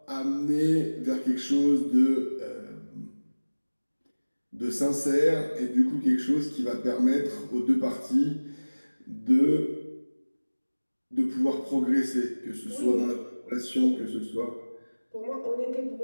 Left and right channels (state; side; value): inverted; both; correlation -1.00